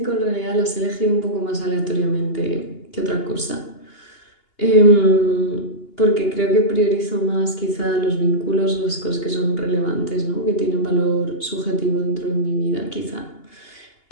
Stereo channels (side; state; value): right; late; 2.8 ms